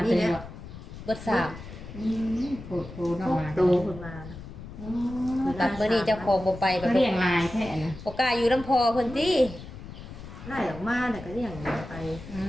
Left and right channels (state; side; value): noise; left; rumble, 13 dB below the sound